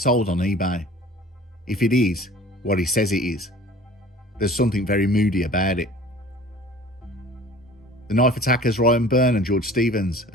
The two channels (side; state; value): both; normal; correlation 0.46